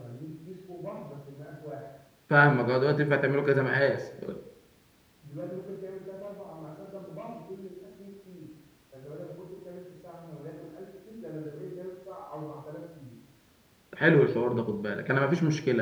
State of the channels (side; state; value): both; identical; correlation 1.00